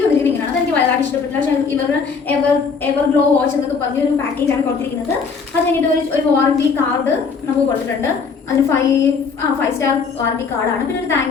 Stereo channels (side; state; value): right; quieter; 5.4 dB